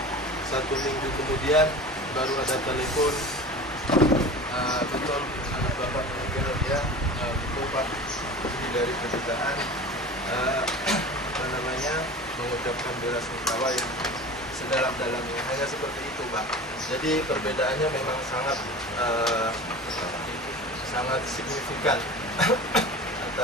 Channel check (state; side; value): normal; both; correlation 0.35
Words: 1 minggu kemudian baru ada telepon, betul anak bapak meninggal ya, betul Pak, ini dari kedutaan mengucapkan bela sungkawa yang sedalam-dalamnya, hanya seperti itu Pak. Jadi perbedaannya memang sangat signifikan